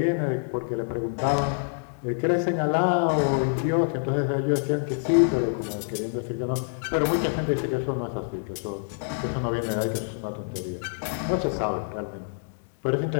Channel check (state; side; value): silent; right; digital silence